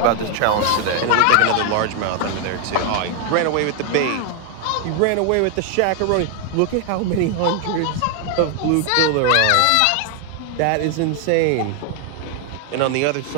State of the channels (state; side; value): different; both; correlation 0.01